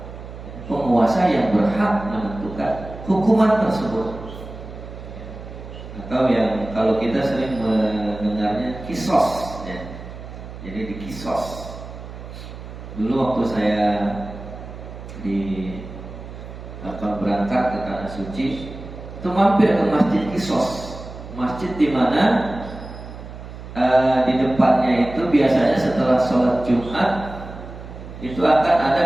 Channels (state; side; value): noise; right; hum, 13 dB below the sound